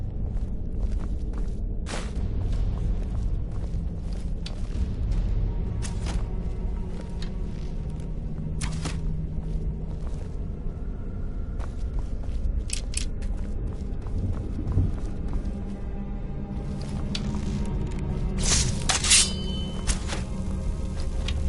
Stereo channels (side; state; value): both; identical; correlation 1.00